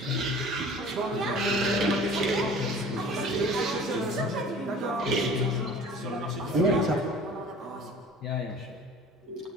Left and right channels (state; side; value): normal; both; correlation 0.45